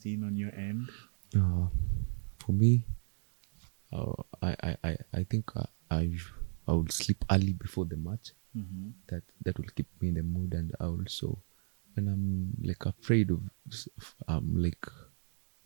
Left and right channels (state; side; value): silent; left; digital silence